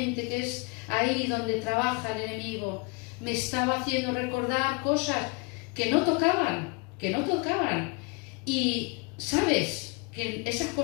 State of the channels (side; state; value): right; quieter; 30.6 dB